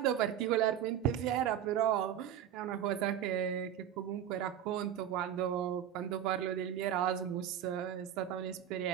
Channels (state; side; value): quieter; left; 10.1 dB